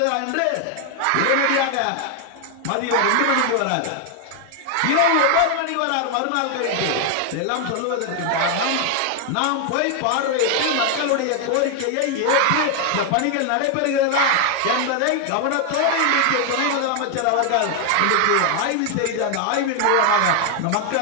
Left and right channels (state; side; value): different; both; correlation 0.00